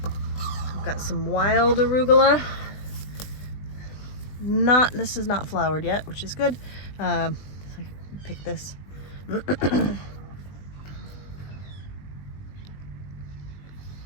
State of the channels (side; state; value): right; late; 20 ms